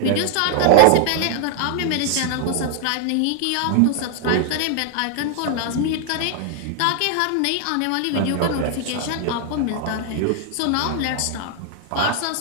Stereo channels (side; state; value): both; different; correlation 0.00